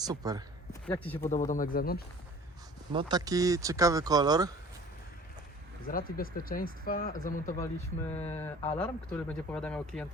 Jak Ci się podoba domek z zewnątrz? No taki ciekawy kolor. Z racji bezpieczeństwa zamontowaliśmy alarm, który będzie powiadamiał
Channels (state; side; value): normal; both; correlation 0.46